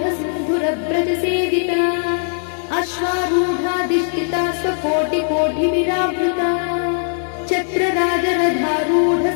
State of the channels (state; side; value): silent; right; digital silence